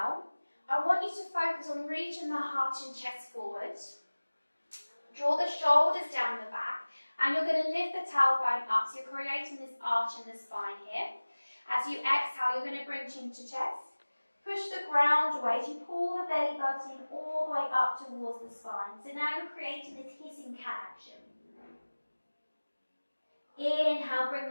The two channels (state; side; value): inverted; both; correlation -1.00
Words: I want you to focus on reaching the heart and chest forward. Draw the shoulders down the back, and you're going to lift the tailbone up, so you're creating this arch in the spine here. As you exhale, you're going to bring chin to chest. Push the ground away as you pull the belly button all the way up towards the spine. So now you're creating this hissing cat action. Inhale, bring